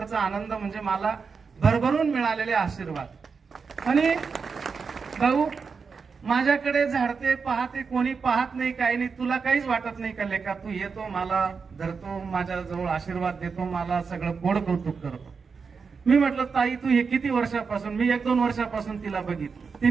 आनंद म्हणजे मला भरभरून मिळालेले आशीर्वाद। आणि भाऊ माझ्याकडे झाडते पाहते, कोणी पाहत नाही, काही नाही, तुला काहीच वाटत नाही का लेका? तू येतो, मला धरतो, माझ्या जवळ आशीर्वाद देतो, मला सगळं गोड कौतुक करतो। मी म्हटलं ताई तू हे किती वर्षापासून? मी 1-2 वर्षापासून तिला बघितलं।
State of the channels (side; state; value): left; quieter; 5.3 dB